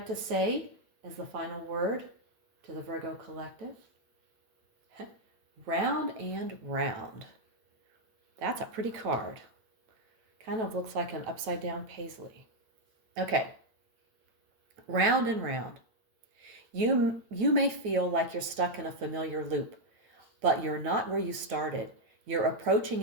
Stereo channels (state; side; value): late; left; 8.8 ms